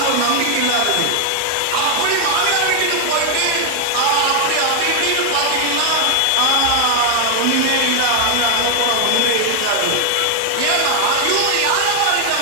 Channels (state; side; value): different; both; correlation 0.00